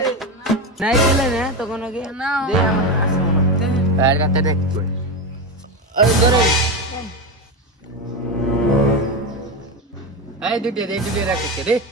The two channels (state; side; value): normal; both; correlation 0.16